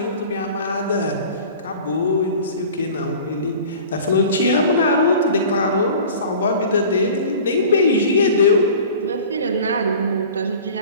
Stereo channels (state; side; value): inverted; both; correlation -0.42